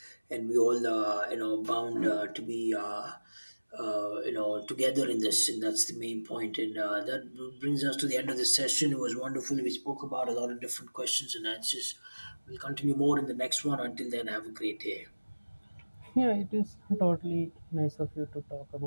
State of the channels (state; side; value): inverted; both; correlation -1.00